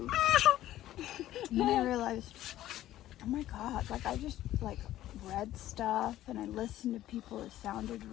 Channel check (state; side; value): quieter; right; 13.8 dB